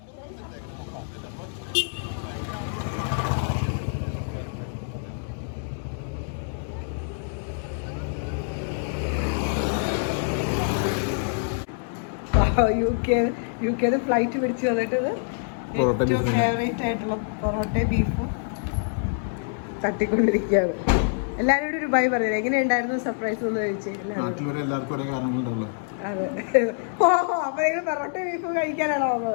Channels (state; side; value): silent; right; digital silence